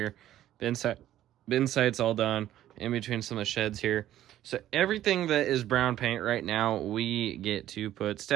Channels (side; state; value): left; quieter; 12.8 dB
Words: Bin site's all done, in between some of the sheds here. So everything that is brown paint right now, we get to put